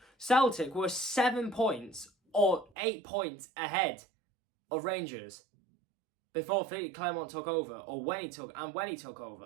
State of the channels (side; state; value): left; drops out; at 2.7 s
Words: Celtic were 7 points or 8 points ahead of Rangers before Philly Clermont took over, or when he took